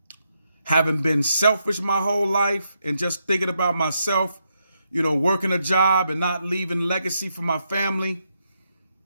having been selfish my whole life and just thinking about myself, working a job and not leaving legacy for my family.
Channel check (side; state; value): both; inverted; correlation -0.81